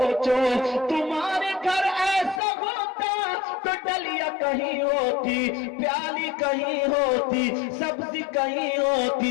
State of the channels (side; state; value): right; drops out; at 2.4 s